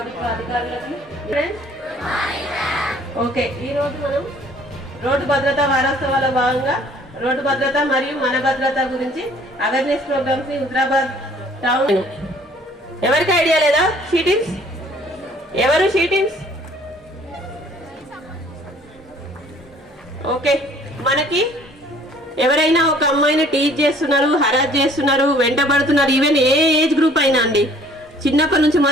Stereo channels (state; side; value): normal; both; correlation 0.56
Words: అధికారులకి ఓకే. ఈరోజు మనం రోడ్డు భద్రతా వారోత్సవాల భాగంగా రోడ్డు భద్రత మరియు మన భద్రత గురించి అవేర్నెస్ ప్రోగ్రామ్స్ ని హుజరాబాద్ టౌన్. ఎవరికి ఐడియా లేదా? షీటింగ్స్ ఎవరు? Sheetings okay. మనకి ఎవరైనా ఒక అమ్మాయిని టీచ్ చేస్తున్నారు, హరాస్ చేస్తున్నారు, వెంటబడుతున్నారు, ఈవెన్ ఏ ఏజ్ గ్రూప్ అయినా అండి, చిన్నప్పటి నుంచి